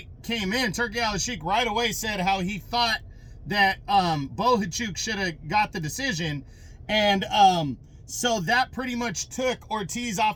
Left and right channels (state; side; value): identical; both; correlation 1.00